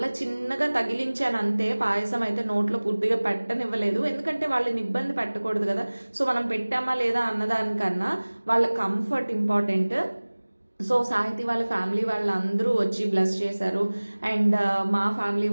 చిన్నగా తగిలించాను అంతే, పాయసం అయితే నోట్లో పూర్తిగా పెట్టనివ్వలేదు, ఎందుకంటే వాళ్ళని ఇబ్బంది పెట్టకూడదు కదా. సో మనం పెట్టామా లేదా అన్నదానికన్నా వాళ్ళ కంఫర్ట్ ఇంపార్టెంట్. సో సాహితి వాళ్ళ ఫ్యామిలీ వాళ్ళందరూ వచ్చి బ్లెస్ చేశారు. అండ్ మా ఫ్యామిలీ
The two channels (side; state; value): both; inverted; correlation -1.00